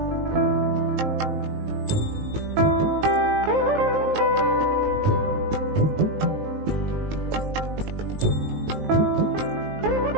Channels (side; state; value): left; late; 19 ms